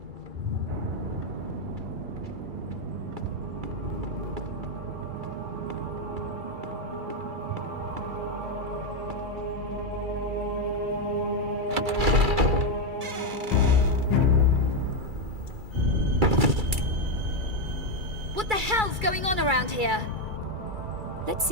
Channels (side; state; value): left; late; 2.3 ms